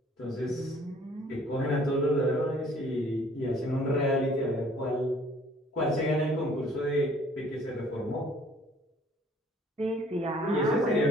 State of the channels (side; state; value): both; normal; correlation 0.57